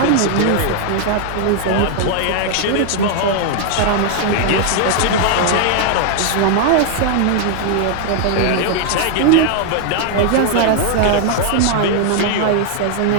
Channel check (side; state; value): both; different; correlation 0.00